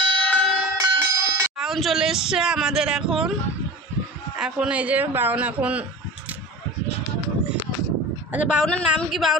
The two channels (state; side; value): normal; both; correlation 0.33